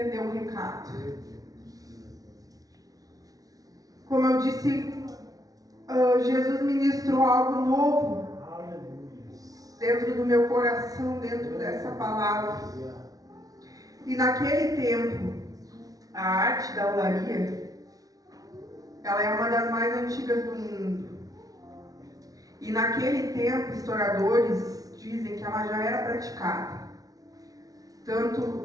o recado. Como eu disse, Jesus ministrou algo novo dentro do meu coração, dentro dessa palavra. E naquele tempo, a arte da olaria, ela é uma das mais antigas do mundo. E naquele tempo, historiadores dizem que ela já era praticada.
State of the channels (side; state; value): left; late; 0.18 ms